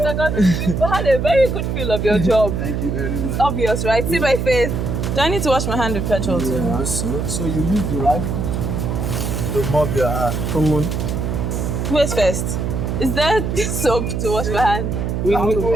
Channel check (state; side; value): noise; right; hum, 1 dB below the sound